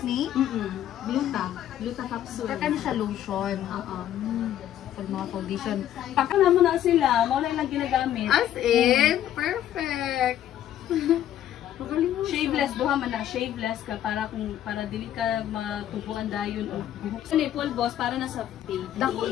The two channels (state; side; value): quieter; right; 11.5 dB